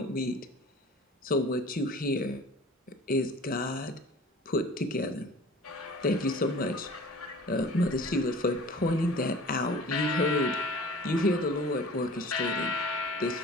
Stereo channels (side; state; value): both; normal; correlation 0.43